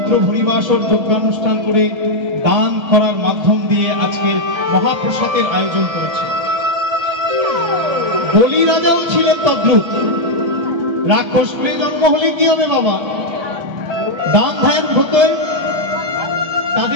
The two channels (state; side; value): late; left; 1.3 ms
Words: হরিবাসর যজ্ঞানুষ্ঠান করে দান করার মাধ্যম দিয়ে আজকের মহাপ্রসাদের আয়োজন করেছে। বলি রাজাও ছিলেন তদ্রুপ। রাক্ষস কুলে জন্ম হলে কি হবে বাবা, দান ধ্যান হতো।